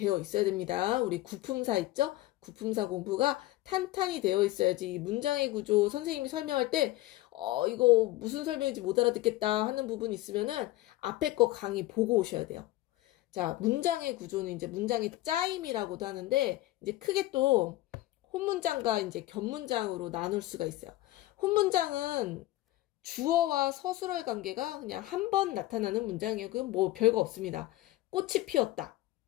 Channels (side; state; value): right; quieter; 17.2 dB